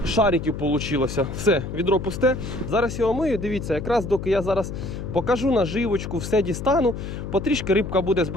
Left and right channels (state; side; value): noise; left; hum, 7 dB below the sound